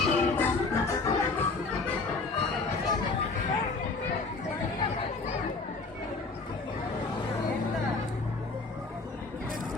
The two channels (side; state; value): right; quieter; 3.9 dB